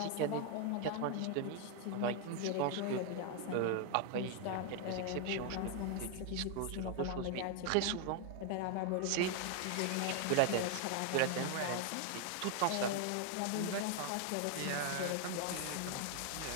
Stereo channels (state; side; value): different; both; correlation 0.00